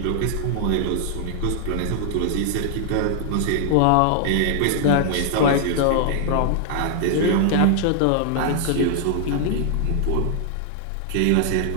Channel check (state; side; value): different; both; correlation -0.01